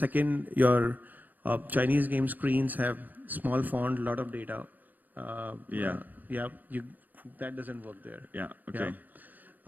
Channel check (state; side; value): late; left; 0.084 ms